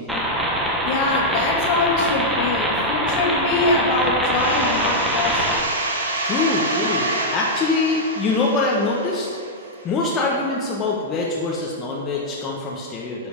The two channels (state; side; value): normal; both; correlation -0.04